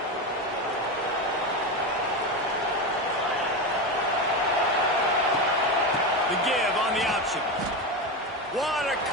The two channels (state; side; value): normal; both; correlation 0.17